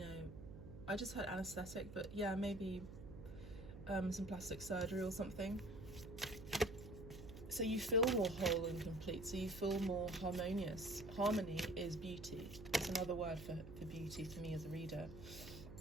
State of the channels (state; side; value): noise; right; hum, 12 dB below the sound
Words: I just heard anesthetic, but yeah, maybe some plastic surgery or something. So you feel more whole and complete, so you feel more harmonious. Harmony is beauty. It's another word for beauty for me as a reader.